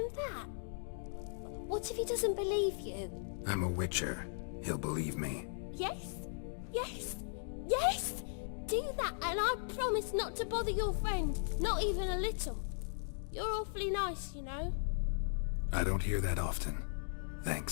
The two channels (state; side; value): silent; right; digital silence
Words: that? What if he doesn't believe you? I'm a witcher. He'll believe me. Yes? Yes? Yes! Do that and I promise not to bother your friend. Not even a little. You're awfully nice, you know. I don't hear that often.